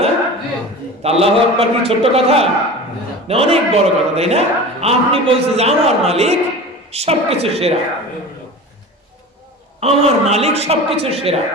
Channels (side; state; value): both; normal; correlation 0.34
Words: না? আল্লাহু আকবার কি ছোট্ট কথা না? অনেক বড় কথা, তাই না? আপনি বলছেন যে আমার মালিক সবকিছু সেরা, আমার মালিক সবকিছু সেরা।